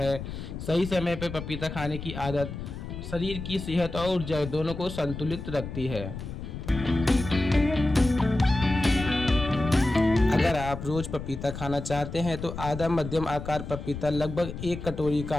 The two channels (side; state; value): left; noise; rumble, 8 dB below the sound